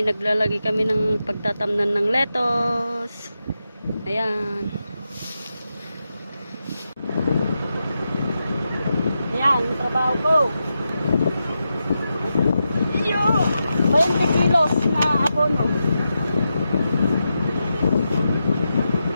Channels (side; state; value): both; inverted; correlation -0.88